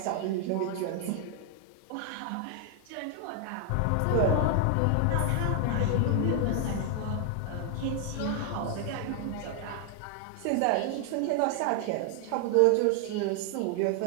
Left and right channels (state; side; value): different; both; correlation 0.00